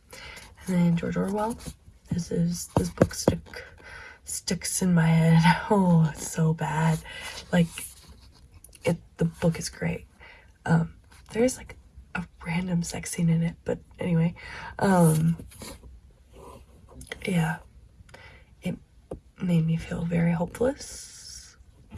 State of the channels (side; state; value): both; identical; correlation 1.00